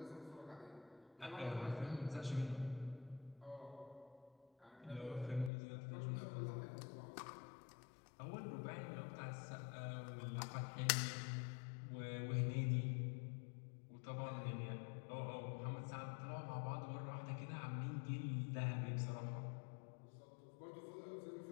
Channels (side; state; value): right; drops out; at 5.5 s